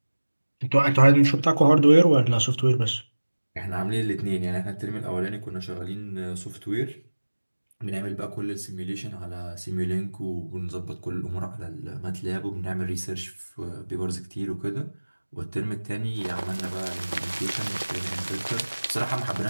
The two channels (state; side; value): inverted; both; correlation -1.00